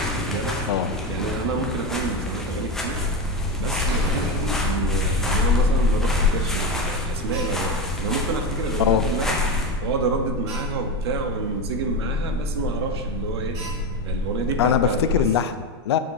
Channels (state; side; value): normal; both; correlation 0.15